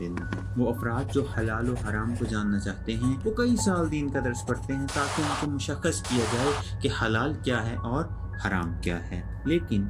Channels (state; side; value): identical; both; correlation 1.00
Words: ہے۔ وہ افراد جو حلال و حرام کو جاننا چاہتے ہیں وہ کئی سال دین کا درس پڑھتے ہیں تاکہ ان کو مشخص کیا جائے کہ حلال کیا ہے اور حرام کیا ہے، لیکن